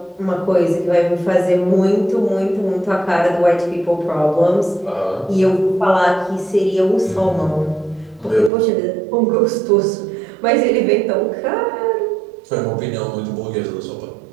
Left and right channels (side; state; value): left; drops out; at 8.5 s